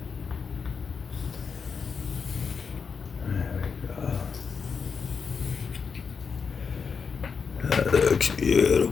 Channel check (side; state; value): right; quieter; 5.8 dB